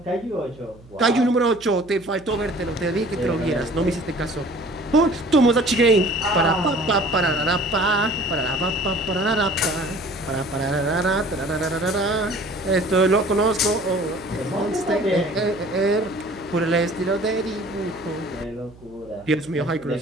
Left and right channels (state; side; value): noise; right; hum, 23 dB below the sound